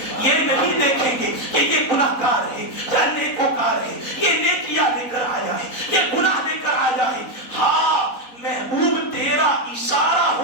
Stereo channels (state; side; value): late; right; 3.9 ms